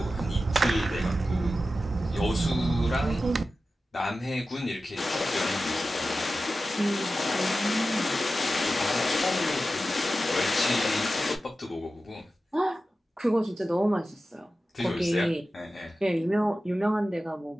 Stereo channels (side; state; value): both; normal; correlation 0.93